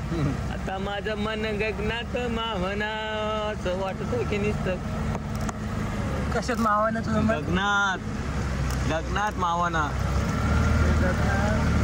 आता माझं मन गगनात मावना असं वाटत की नुसतं कशात मावाना तुझं गगनात मावना.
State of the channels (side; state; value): both; identical; correlation 1.00